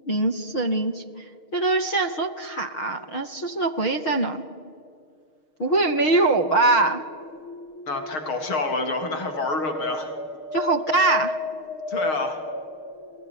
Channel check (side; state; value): right; late; 6.4 ms